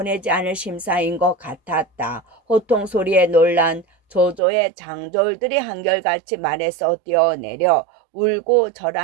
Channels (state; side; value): drops out; left; at 4.4 s